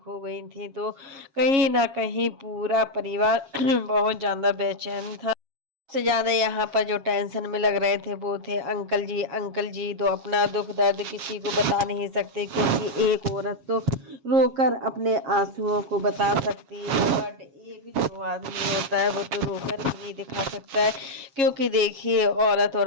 गई थी, तो कहीं ना कहीं पूरा परिवार बहुत ज्यादा बेचैन था। सबसे ज्यादा यहाँ पर जो टेंशन में लग रहे थे वो थे अंकल जी। अंकल जी तो अपना दुख दर्द किसी को बता नहीं सकते, क्योंकि एक औरत तो रोकर अपने आंसुओं को बता सकती है, बट एक जो आदमी होता है वो तो रोकर भी नहीं दिखा सकता है। क्योंकि देखिए, औरत और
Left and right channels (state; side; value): late; left; 7.3 ms